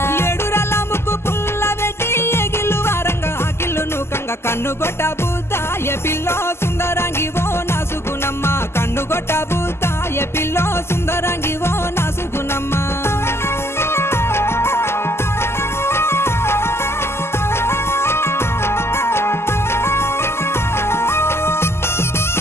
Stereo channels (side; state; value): right; late; 0.12 ms